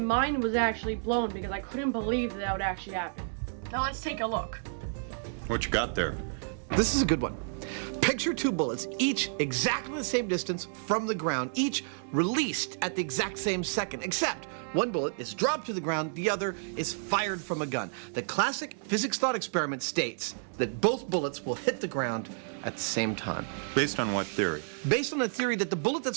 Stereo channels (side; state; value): left; silent; digital silence